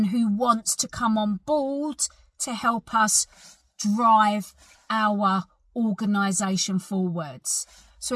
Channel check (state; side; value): identical; both; correlation 1.00